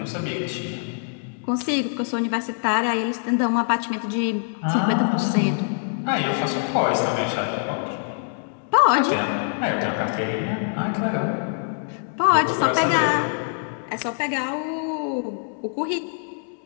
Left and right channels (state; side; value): silent; right; digital silence